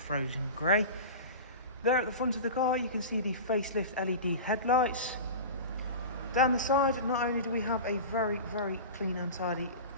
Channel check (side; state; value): both; inverted; correlation -0.30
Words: grey. There at the front of the car you can see the facelift LED headlights. Down the side, not only do we have a very clean and tidy